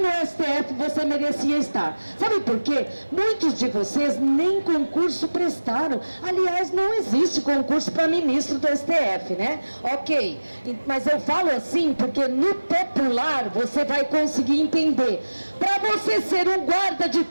STF você merecia estar. Sabe por quê? Muitos de vocês nem concurso prestaram. Aliás, não existe concurso para ministro do STF, né? Ok, mas eu falo assim porque no popular você vai conseguir entender. Para você ser um guarda de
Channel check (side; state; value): both; inverted; correlation -1.00